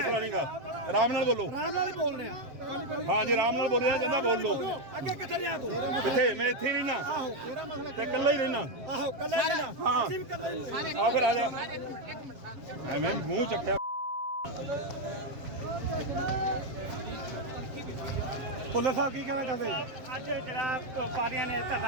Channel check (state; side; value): late; left; 7.3 ms